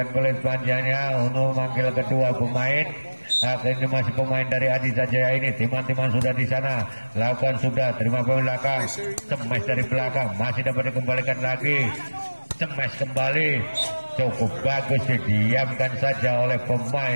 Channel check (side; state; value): both; inverted; correlation -1.00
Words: kulit panjangnya untuk memanggil kedua pemain. Ini masih pemain dari Adi Sanjaya ini. Timan-timan sudah di sana, lakukan sudah, terima pemain belakang, cemes dari belakang, masih dapat dikembalikan lagi, cemes kembali, cukup bagus, didiamkan saja oleh